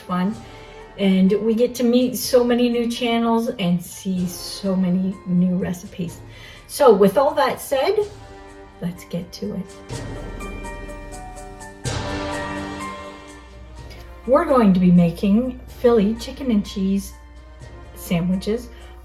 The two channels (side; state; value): both; identical; correlation 1.00